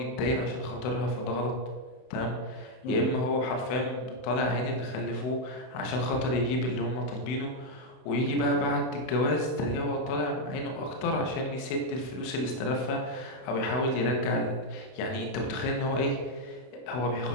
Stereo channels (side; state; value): right; late; 32 ms